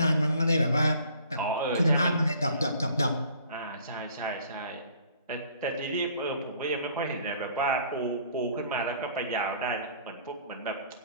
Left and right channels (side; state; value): both; inverted; correlation -0.55